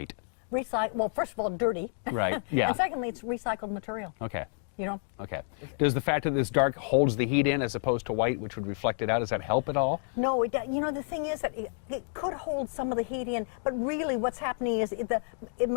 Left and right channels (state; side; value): silent; right; 58 dB below the other